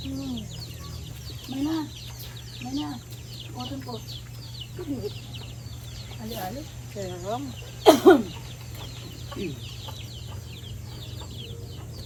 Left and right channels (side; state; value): both; identical; correlation 1.00